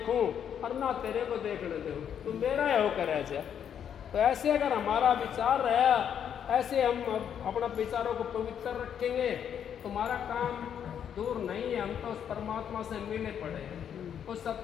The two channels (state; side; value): quieter; right; 8.7 dB